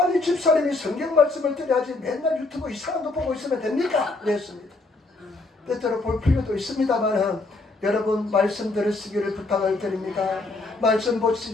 집사님이 성경 말씀을 드려야지 맨날 유튜브 이상한 거 보고 있으면 됩니까? 그랬습니다. 때때로 볼 필요도 있습니다만 여러분 말씀 들으시기를 부탁을 드립니다. 말씀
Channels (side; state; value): right; quieter; 3.3 dB